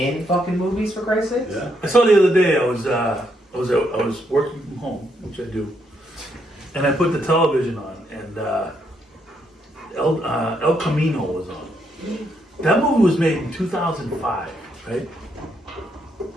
fucking movies, for Christ's sake? Yeah. I saw the other day. I was working from home, which I do, and I put the television on, and El Camino was on. That movie was made in 2005, right?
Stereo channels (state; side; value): normal; both; correlation 0.76